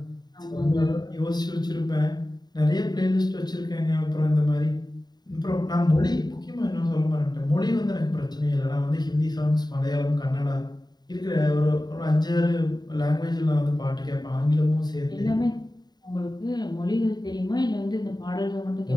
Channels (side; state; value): right; late; 0.20 ms